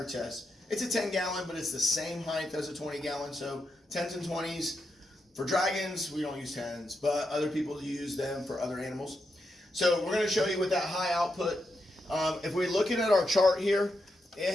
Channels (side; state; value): both; normal; correlation 0.85